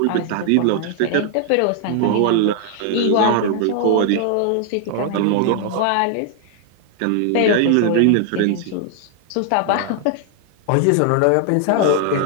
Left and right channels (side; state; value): both; different; correlation 0.00